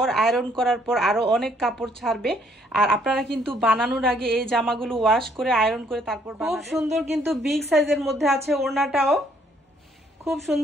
আয়রন করার পর আরো অনেক কাপড় ছাড়বে। আর আপনারা কিন্তু বানানোর আগে এই জামাগুলো ওয়াশ করে আয়রন করে তারপর খুব সুন্দর, কিন্তু বিগ সাইজের মধ্যে আছে ওড়নাটাও। খুব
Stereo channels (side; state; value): both; normal; correlation 0.66